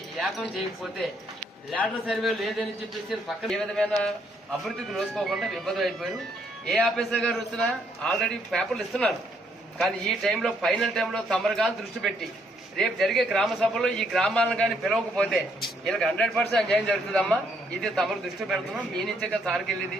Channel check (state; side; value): normal; both; correlation 0.71